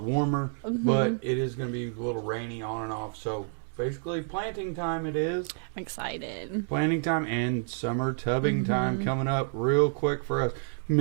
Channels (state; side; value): silent; left; digital silence